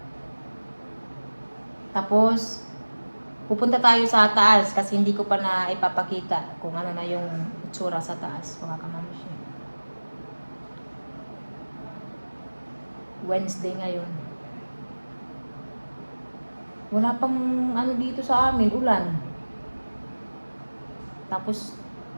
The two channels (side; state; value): both; inverted; correlation -1.00